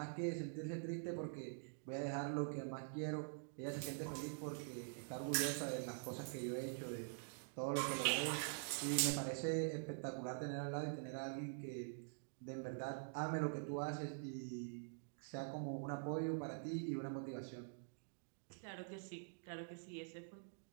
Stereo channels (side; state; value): left; silent; digital silence